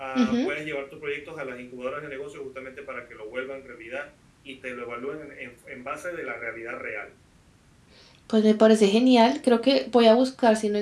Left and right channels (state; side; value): identical; both; correlation 1.00